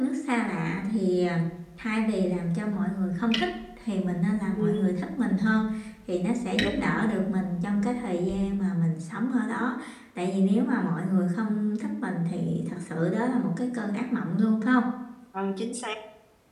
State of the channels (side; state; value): both; identical; correlation 1.00